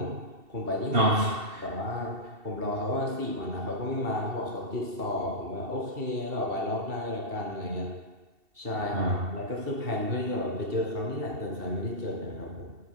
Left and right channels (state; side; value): late; left; 2.7 ms